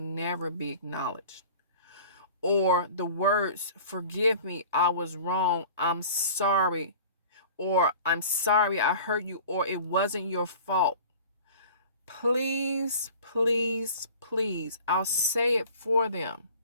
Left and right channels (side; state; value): both; inverted; correlation -0.43